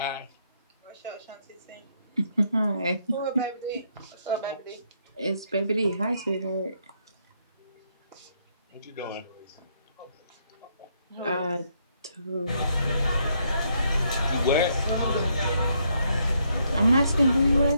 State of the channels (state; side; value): inverted; both; correlation -0.74